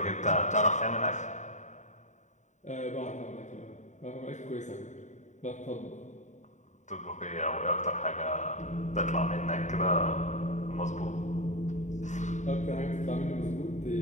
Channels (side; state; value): right; late; 0.35 ms